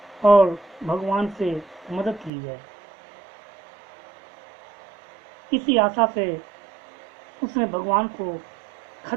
और भगवान से मदद ली जाए। इसी आशा से उसने भगवान को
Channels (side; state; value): left; drops out; at 2.3 s